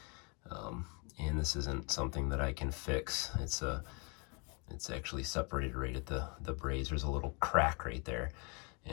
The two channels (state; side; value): quieter; right; 33.0 dB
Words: And this isn't something that I can fix. It's actually separated right at the braze. There's a little crack right there.